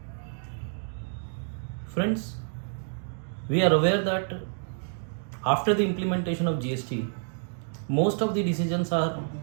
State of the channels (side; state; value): left; silent; digital silence